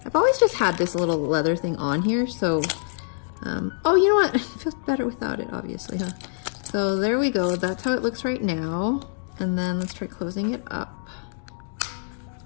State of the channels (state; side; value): silent; right; digital silence